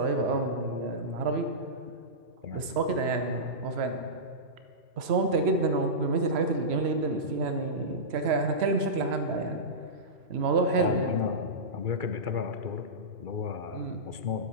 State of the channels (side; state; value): left; late; 3.0 ms